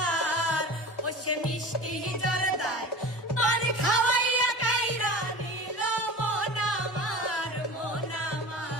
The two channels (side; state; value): both; normal; correlation 0.34